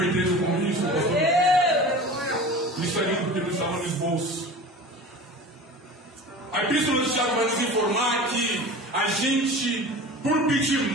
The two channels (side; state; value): both; normal; correlation 0.36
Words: entendo com isso, pastor? Isso é lindo porque não estava no esboço. A Epístola de Tiago vai nos informar que a gente, por pedir